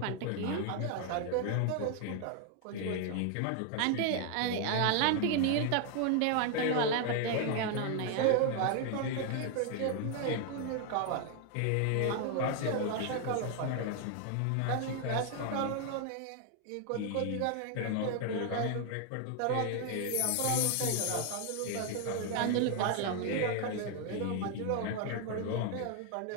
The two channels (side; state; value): both; different; correlation 0.00